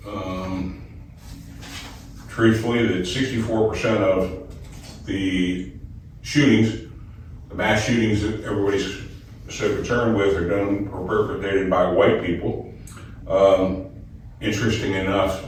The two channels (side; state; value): both; identical; correlation 1.00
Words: truthfully, that 64% of the shootings, the mass shootings that everybody's so concerned with, are done or perpetrated by white people. Interesting enough,